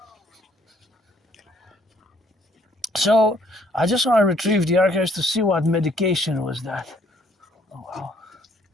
So I just want to retrieve the archives to see what medication was that. Oh wow.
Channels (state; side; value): normal; both; correlation 0.65